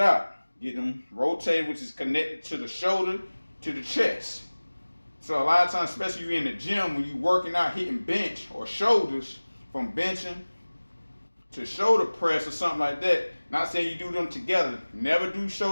out. Get them rotated, which is connected to the shoulder to the chest. So a lot of times, especially if you're in the gym, when you're working out, hitting bench or shoulders, from benching to shoulder press or something like that, not saying you do them together. Never do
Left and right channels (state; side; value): inverted; both; correlation -1.00